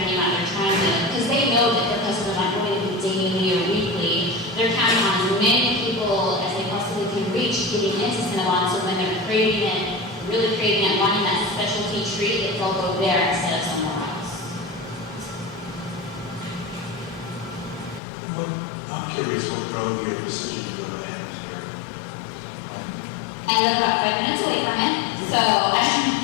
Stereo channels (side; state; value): right; drops out; at 18.0 s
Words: their name out. They're trying to, because they know that their customers aren't going to be daily or weekly. They're counting on as many people as they possibly can reach getting into Cinnabon, so when they're craving it, really craving it, wanting that specialty treat, they'll go there instead of somewhere else. I'm curious what drove your decision to go to Amsterdam? I live about 5 minutes away from it, so